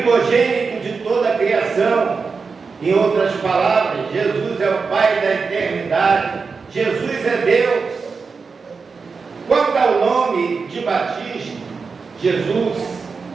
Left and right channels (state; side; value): quieter; left; 4.9 dB